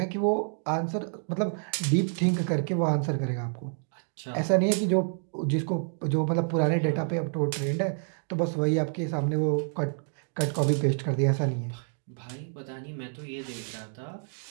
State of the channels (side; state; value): left; silent; 59 dB below the other